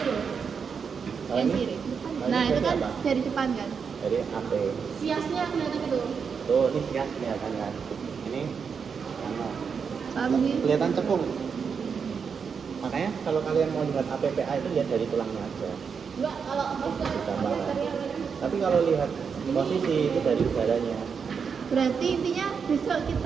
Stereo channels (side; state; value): left; quieter; 6.2 dB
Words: Kalau Yang ini, kiri. kalau Nah ini itu berarti kan apa? dari depan kan. Dari AP. siasnya kelihatan gitu Tuh, ini sias kelihatan kan. Ini sama. Ambil. Kelihatan cekung. Makanya kalau kalian mau lihat APPA itu lihat dari tulangnya aja. enggak kalau Gambaran. Tapi kalau lihat posisi itu dari udaranya. Berarti intinya besok